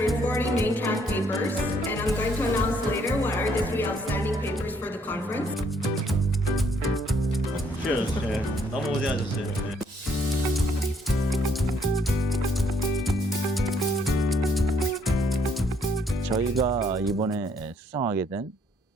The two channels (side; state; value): both; normal; correlation 0.68